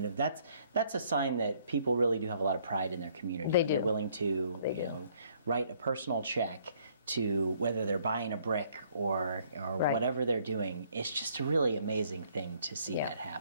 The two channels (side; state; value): both; inverted; correlation -0.63